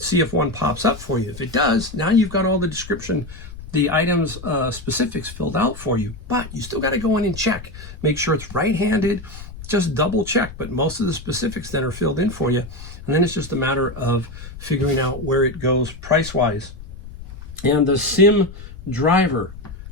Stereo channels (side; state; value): left; noise; rumble, 14 dB below the sound